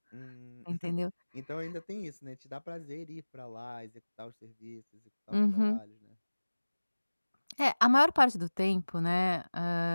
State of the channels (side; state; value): both; inverted; correlation -1.00